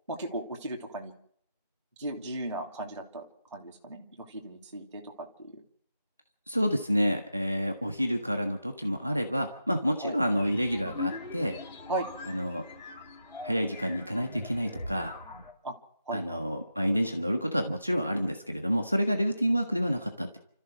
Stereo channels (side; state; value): both; inverted; correlation -0.88